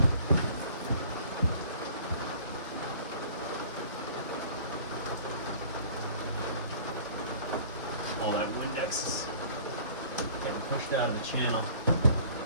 All that Windex is getting pushed out of the channel.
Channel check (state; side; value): inverted; both; correlation -0.50